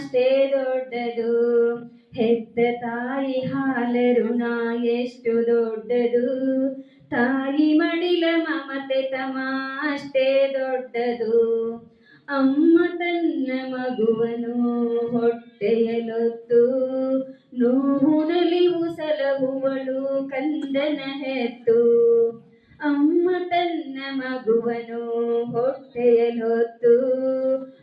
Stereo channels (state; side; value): identical; both; correlation 1.00